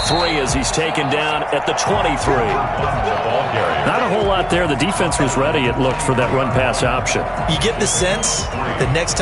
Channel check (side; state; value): both; identical; correlation 1.00